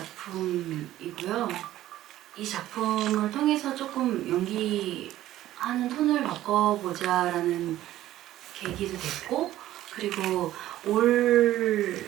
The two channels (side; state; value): left; quieter; 14.0 dB